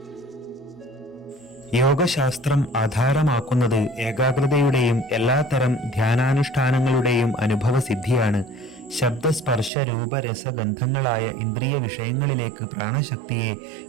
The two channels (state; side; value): drops out; left; at 9.7 s